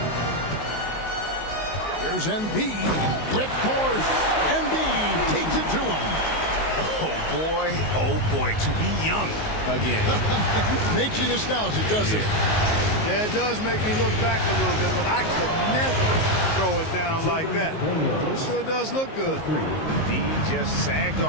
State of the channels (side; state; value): right; late; 19 ms